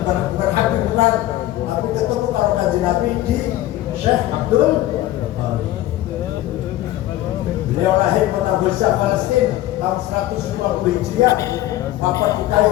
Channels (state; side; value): quieter; right; 15.0 dB